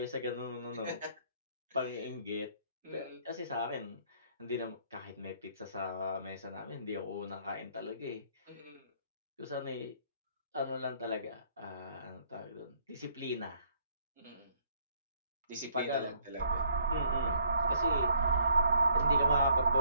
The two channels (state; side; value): inverted; both; correlation -0.65